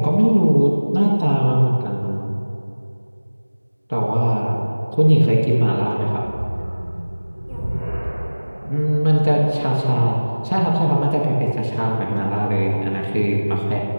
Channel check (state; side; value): inverted; both; correlation -1.00